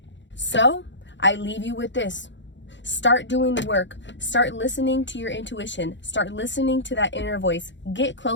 So I leave you with this. Start doing the work. Start listening to your intuition. Start listening to that inner voice. Get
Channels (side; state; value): right; late; 0.53 ms